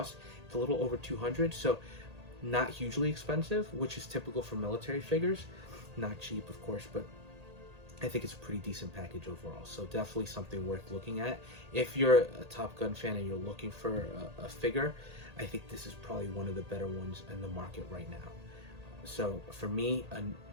it's a little over $200, so not hugely expensive, which is typical for military figures. Not cheap, of course, but I think it's a pretty decent package overall. So definitely something worth looking at. If you're a Top Gun fan and you're looking for a figure, I think this is probably one of the better ones in the market right now. So for me,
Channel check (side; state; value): left; late; 1.8 ms